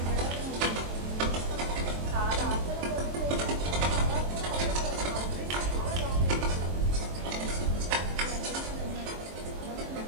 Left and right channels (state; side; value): late; left; 23 ms